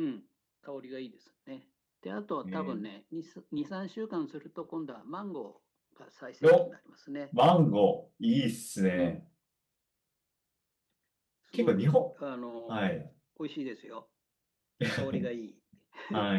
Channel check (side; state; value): both; identical; correlation 1.00